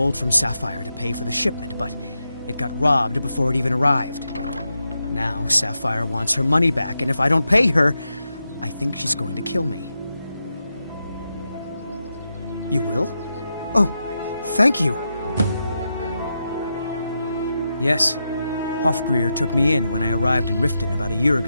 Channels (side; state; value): both; inverted; correlation -0.87